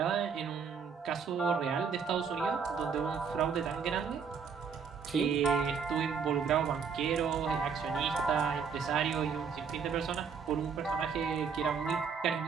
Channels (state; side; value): quieter; left; 6.2 dB